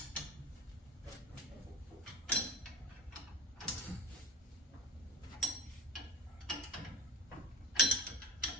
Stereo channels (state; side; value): normal; both; correlation 0.28